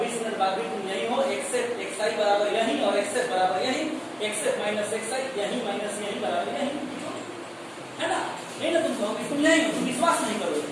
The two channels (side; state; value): both; identical; correlation 1.00